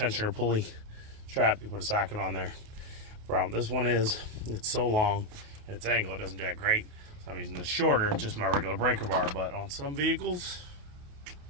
pulley strap. You put a socket on there. Problem this one is, it's so long, its angle, it doesn't do that great. So I'm using this shorter, just my regular breaker bar. But on some vehicles,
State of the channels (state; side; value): late; left; 28 ms